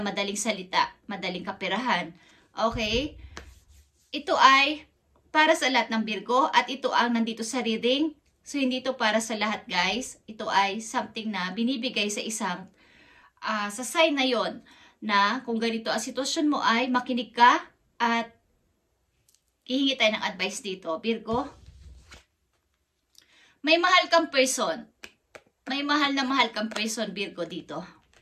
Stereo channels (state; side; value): identical; both; correlation 1.00